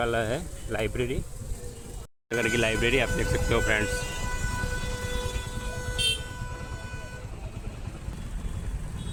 है, लाइब्रेरी, नगर की लाइब्रेरी, आप देख सकते हो फ्रेंड्स।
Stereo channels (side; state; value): both; identical; correlation 1.00